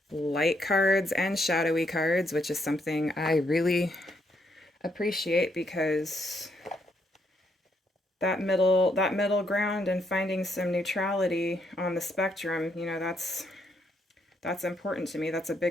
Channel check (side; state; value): both; normal; correlation 0.75